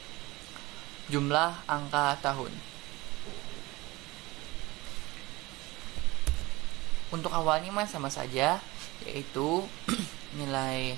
jumlah angka tahun. Untuk awalnya mah sama saja, yaitu nilai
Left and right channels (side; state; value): left; quieter; 21.3 dB